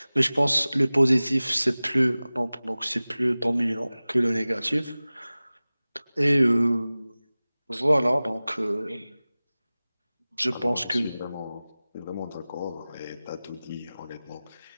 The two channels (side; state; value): both; inverted; correlation -0.98